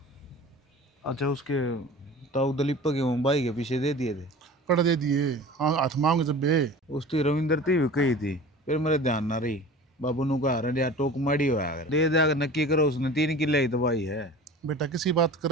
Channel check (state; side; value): normal; both; correlation 0.39